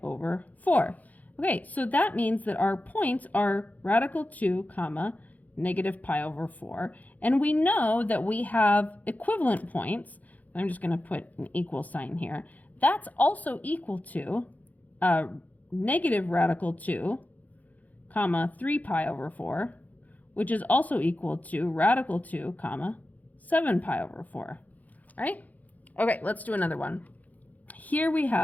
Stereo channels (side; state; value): right; late; 0.078 ms